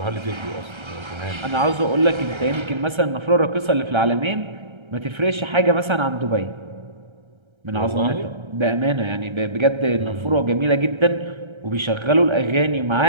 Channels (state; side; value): late; left; 1.3 ms